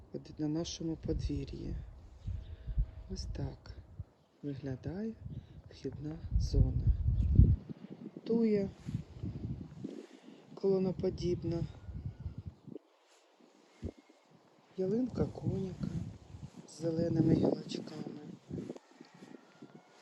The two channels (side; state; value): both; identical; correlation 1.00